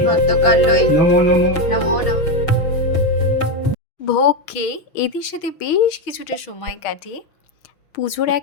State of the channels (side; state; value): right; late; 6.1 ms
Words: ভদ্রকাল্যই নমো নমো। নমো নমঃ। ভোগ খেয়ে এদের সাথে বেশ কিছুটা সময় কাটিয়ে পুজোর